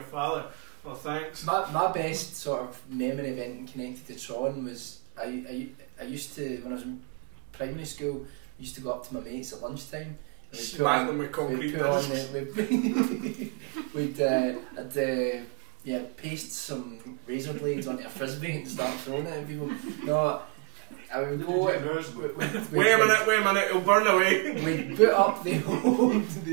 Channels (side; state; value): left; quieter; 30.9 dB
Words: father? Well, thanks. My best sort of memory event connected to Tron was I used to, when I was in primary school, I used to go up to my mates at lunchtime. Smack them with concrete discs. We'd paste some razor blades onto a frisbee and start throwing it at people. No, I would go. Wait a minute, it'll burn away. We'd put up the old